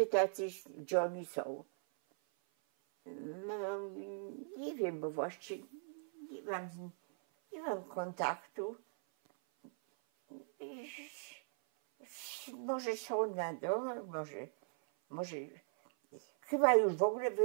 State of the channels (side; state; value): left; silent; 52 dB below the other